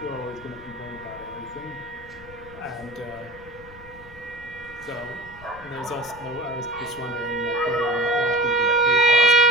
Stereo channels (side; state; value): left; noise; rumble, 20 dB below the sound